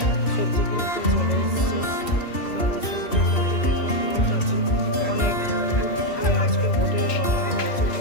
সবজি কিনতে চলে এসছে। দাদা সবজি কিনতে দেখলাম লোক আছে অনেক। আজকে হোটেল বানানো হচ্ছে,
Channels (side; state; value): right; late; 2.7 ms